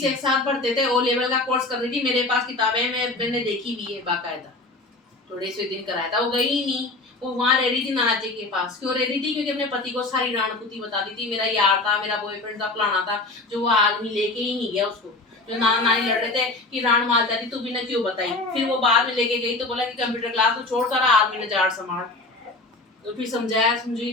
एक साथ भरते थे। ओ लेवल का कोर्स कर रही थी, मेरे पास किताबें मैंने देखी हुई है बाकायदा। थोड़े से दिन कराया था, वो गई ही नहीं। वो वहां रह रही थी नाना जी के पास। क्यों रह रही थी? क्योंकि अपने पति को सारी राणपुती बताती थी, मेरा यार था, मेरा बॉयफ्रेंड था, फलाना था, जो वो आदमी लेके ही नहीं गया उसको। जो नाना नानी लड़ रहे थे कि राण मार जाती तू भी ना क्यों बताई, फिर वो बाद में लेके गई तो बोला कि कंप्यूटर क्लास तो छोड़ सारा आदमी ने जाड़ संभाल, तो फिर समझाया समझी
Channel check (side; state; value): right; quieter; 3.1 dB